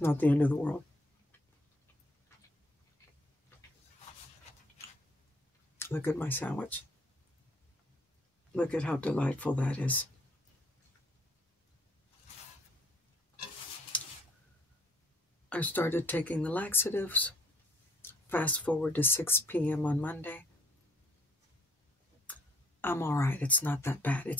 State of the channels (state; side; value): normal; both; correlation 0.64